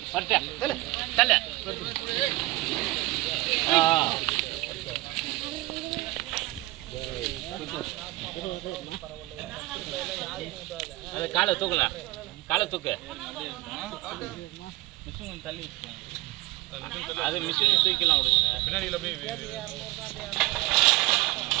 பரட்ட தல தல அது காலை தூக்கல. காலை தூக்கு. மிஷின் தள்ளி வச்சுக்கோங்க. அது மிஷின் தூக்கலாம் விடுங்க. பின்னாடியில போய்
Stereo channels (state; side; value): quieter; left; 20.1 dB